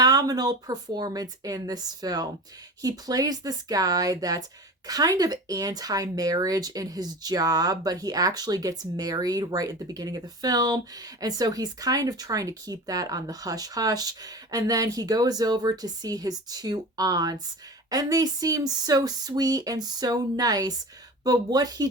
performance in this film. He plays this guy that's kind of anti-marriage in his job, but he actually gets married right at the beginning of the film. And so he's kind of trying to keep that on the hush-hush. And then he goes over to see his two aunts, and they seem so sweet and so nice. But what he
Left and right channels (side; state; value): both; normal; correlation 0.33